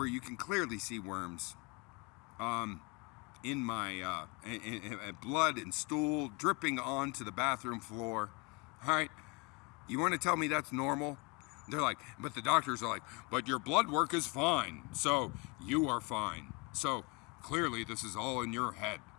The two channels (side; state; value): right; quieter; 28.1 dB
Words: you can clearly see worms. In my blood and stool dripping onto the bathroom floor. All right, you want to tell me that's normal? They're like, but the doctors are like, but your blood work is fine, so you are fine. So clearly this is all in your head.